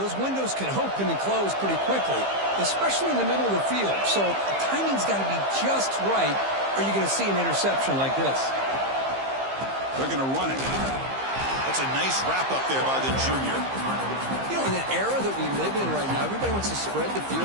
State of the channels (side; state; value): left; late; 15 ms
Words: windows can open and close pretty quickly, especially in the middle of the field. So the timing's got to be just right, or you're going to see an interception like this. They're going to run it. That's a nice wrap up there by the junior. You know, in the era that we live in right now, everybody wants to spread the field